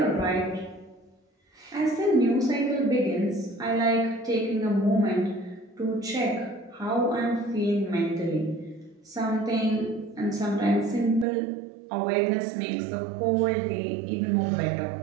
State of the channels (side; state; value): left; drops out; at 11.2 s